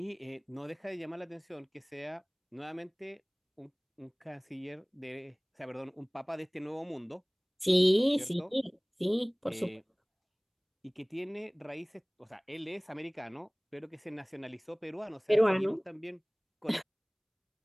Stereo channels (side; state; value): both; identical; correlation 1.00